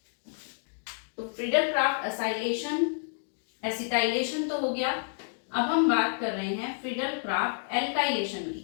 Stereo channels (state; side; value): silent; right; 58 dB below the other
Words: तो फ्रीडल क्राफ्ट असाइलेशन, एसिटाइलेशन तो हो गया। अब हम बात कर रहे हैं फ्रीडल क्राफ्ट एल्काइलेशन की।